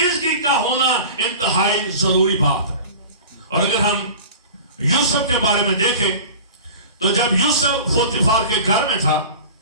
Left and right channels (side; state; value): both; inverted; correlation -0.37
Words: کا ہونا انتہائی ضروری بات ہے. اور اگر ہم یوسف کے بارے میں دیکھیں تو جب یوسف پوتیفار کے گھر میں تھا